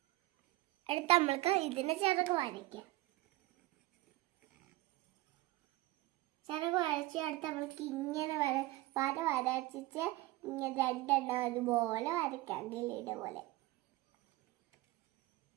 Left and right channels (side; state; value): left; quieter; 18.7 dB